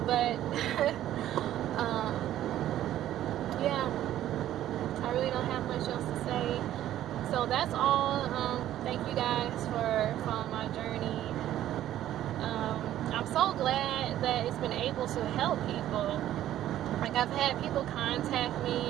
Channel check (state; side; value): quieter; left; 12.6 dB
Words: But, yeah, I really don't have much else to say. So that's all. Thank you guys for following my journey. I'm so glad that it's been able to help people. Like, I've had people contact me,